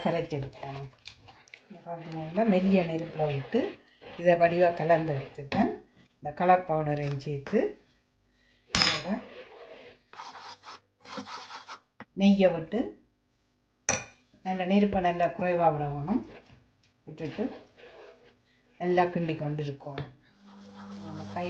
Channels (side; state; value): both; identical; correlation 1.00